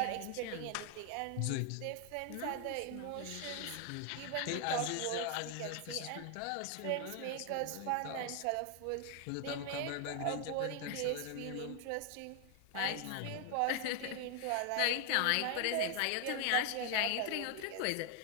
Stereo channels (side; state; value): both; different; correlation 0.00